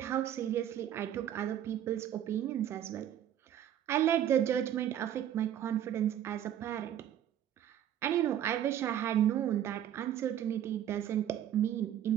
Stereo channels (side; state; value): left; quieter; 10.7 dB